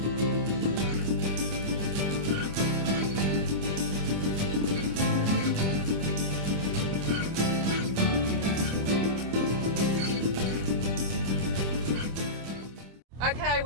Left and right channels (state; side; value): late; left; 25 ms